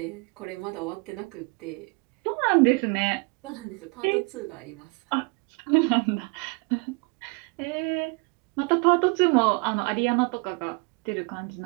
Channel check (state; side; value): quieter; left; 30.9 dB